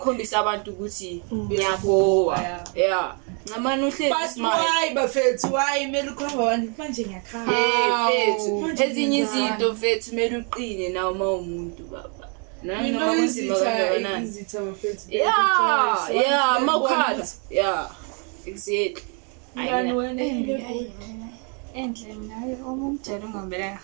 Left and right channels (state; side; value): quieter; left; 37.9 dB